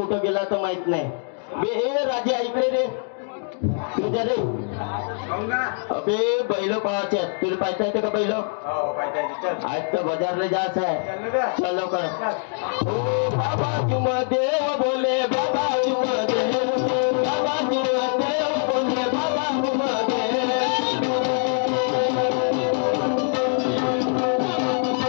गेला तर माहित नाही. बे राजे ऐकले रे तुझ्या रे. अबे बैल पाहायचे तुला पाहता येते का बैल? आज तर बाजारला जायचं आहे. चल लवकर. बाबा तुम देव बोले बाबा तुम देव बाबा तुम देव बोले बाबा तुम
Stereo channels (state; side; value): silent; right; 62 dB below the other